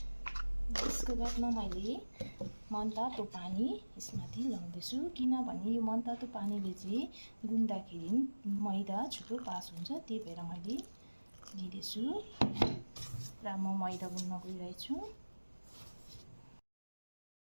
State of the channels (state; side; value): inverted; both; correlation -1.00